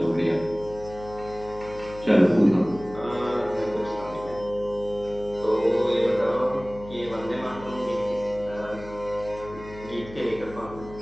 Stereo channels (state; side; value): noise; left; hum, 16 dB below the sound